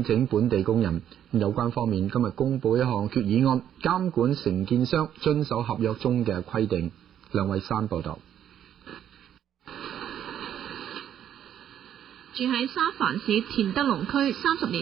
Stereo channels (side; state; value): left; quieter; 10.1 dB